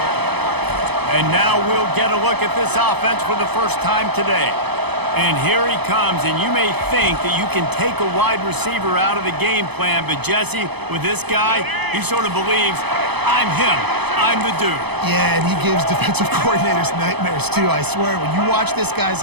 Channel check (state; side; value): late; left; 0.98 ms